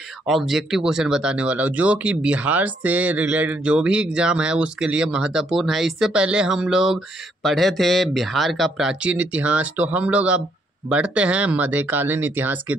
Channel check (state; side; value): normal; both; correlation 0.72